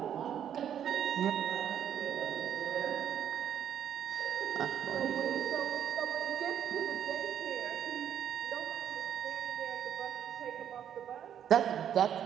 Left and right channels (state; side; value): quieter; left; 9.5 dB